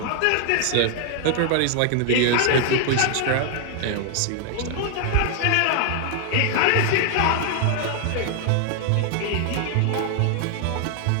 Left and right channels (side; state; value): both; different; correlation 0.00